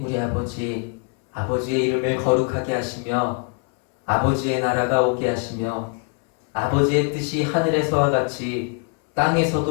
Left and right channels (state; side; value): quieter; right; 39.6 dB